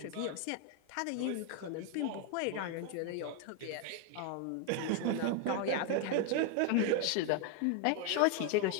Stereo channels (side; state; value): both; different; correlation 0.01